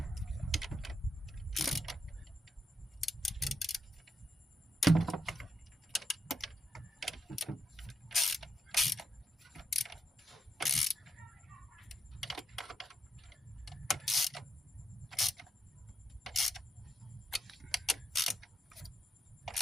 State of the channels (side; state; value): both; normal; correlation 0.82